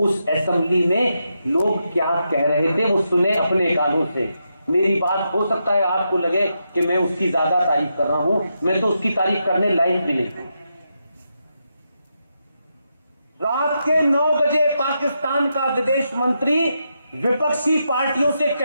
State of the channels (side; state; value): both; inverted; correlation -0.84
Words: असेंबली में लोग क्या कह रहे थे वो सुने अपने कानों से। मेरी बात हो सकता है आपको लगे कि मैं उसकी ज्यादा तारीफ कर रहा हूं, मैं तो उसकी तारीफ करने लायक भी नहीं हूं। रात के 9 बजे पाकिस्तान का विदेश मंत्री विपक्षी पार्टियों से